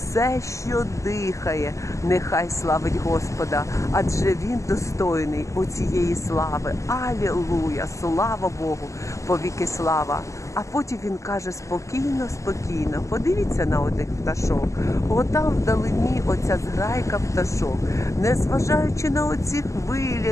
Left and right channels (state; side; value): late; right; 0.15 ms